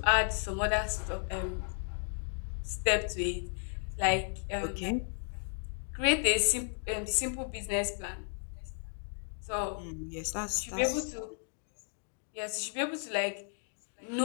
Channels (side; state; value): right; silent; 55 dB below the other